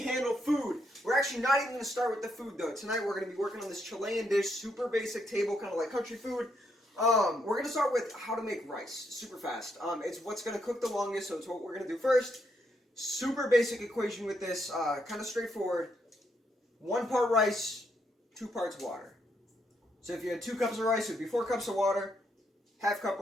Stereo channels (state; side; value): normal; both; correlation 0.77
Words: food. We're actually not even going to start with the food though. Tonight we're going to be working on this Chilean dish, super basic table, kind of like country food. We're going to start with how to make rice, super fast. It's what's going to cook the longest, so it's what we're going to do first. Super basic equation with this, kind of straightforward. 1 part rice, 2 parts water. So if you had 2 cups of rice, it would be 4 cups of water. Half cup